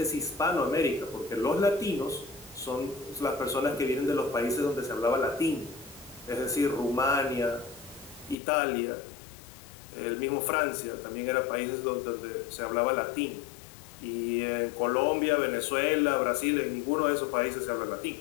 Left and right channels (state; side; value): drops out; right; at 8.3 s